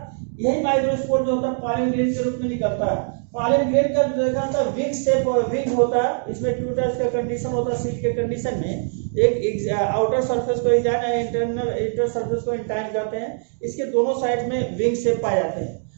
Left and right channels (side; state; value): left; silent; digital silence